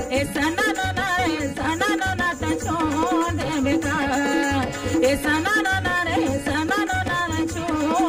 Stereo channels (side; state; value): both; identical; correlation 1.00